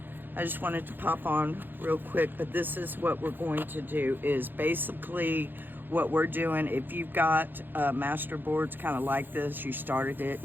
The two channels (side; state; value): left; late; 0.093 ms